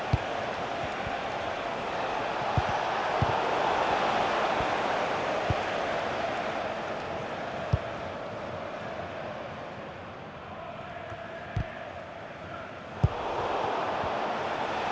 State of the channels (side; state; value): both; identical; correlation 1.00